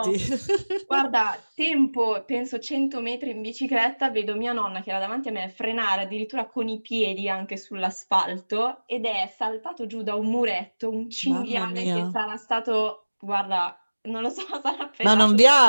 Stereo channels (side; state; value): both; inverted; correlation -1.00